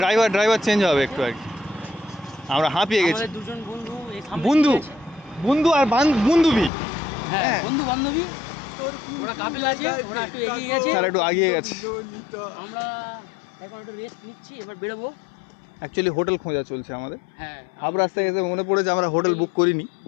ড্রাইভার চেঞ্জ হবে একটু আর কি। আমরা হাঁপিয়ে গেছি। আমাদের দুজন বন্ধু বন্ধু আর বান্ধবী, হ্যাঁ বন্ধু বান্ধবী, ওরা কাপেল আছে, ওরা একটু এগিয়ে গেছে, স্যার একটু আগিয়ে গেছে। আমরা এখন একটু রেস্ট নিচ্ছি, এবার বেরোবো। অ্যাকচুয়ালি হোটেল খোঁজা চলছে আমাদের। হ্যাঁ হাফ রাস্তায় এসে মনে পড়েছে আমরা হোটেল বুক করিনি,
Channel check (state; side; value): drops out; right; at 6.7 s